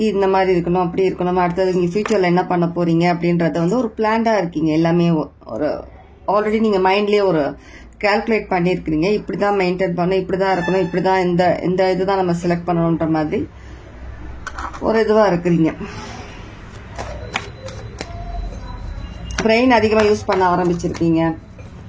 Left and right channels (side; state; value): both; identical; correlation 1.00